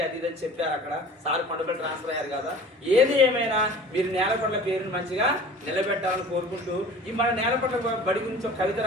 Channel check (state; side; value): normal; both; correlation 0.43